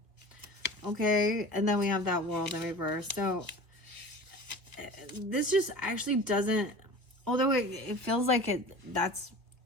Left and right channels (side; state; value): left; late; 1.4 ms